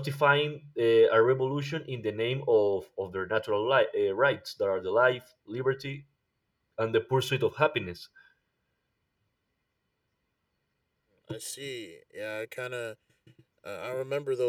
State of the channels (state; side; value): identical; both; correlation 1.00